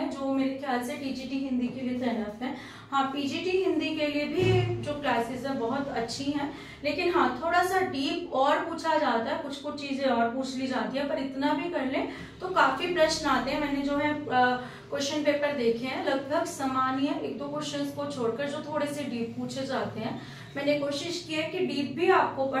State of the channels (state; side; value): identical; both; correlation 1.00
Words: जो मेरे ख्याल से टीजीटी हिंदी के लिए तैनात है। हाँ, पीजीटी हिंदी के लिए भी जो क्लासेस है बहुत अच्छी हैं, लेकिन हाँ थोड़ा सा डीप और पूछा जाता है, कुछ कुछ चीजें और पूछ ली जाती है, पर इतना भी कर लें तो काफी प्रश्न आते हैं। मैंने जो है क्वेश्चन पेपर देखे हैं, लगभग समान ही है, एक दो क्वेश्चंस को छोड़कर जो थोड़े से डीप पूछे जाते हैं। मैंने कोशिश की है कि डीप भी आपको